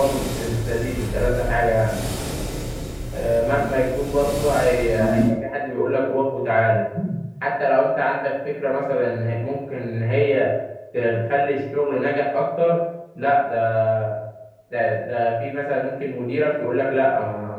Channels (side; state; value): both; identical; correlation 1.00